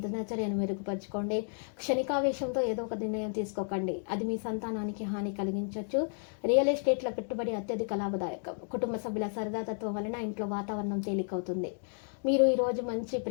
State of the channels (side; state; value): right; silent; 56 dB below the other